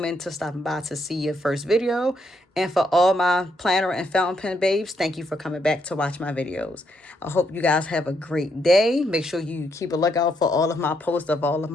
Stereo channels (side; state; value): both; normal; correlation 0.76